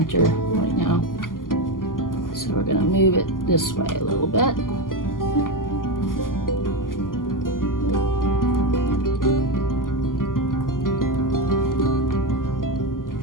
right now. So we're going to move it this way a little bit.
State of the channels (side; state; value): right; late; 0.91 ms